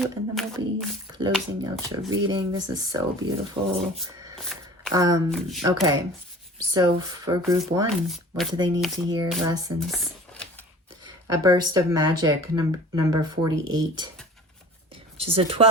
and then we'll be closing out your reading. This is so beautiful. Okay. So for group 1, what do they need to hear? Lessons. A burst of magic, number 48, which is a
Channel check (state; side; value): normal; both; correlation 0.42